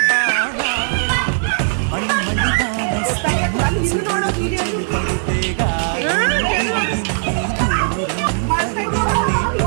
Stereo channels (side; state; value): left; silent; 67 dB below the other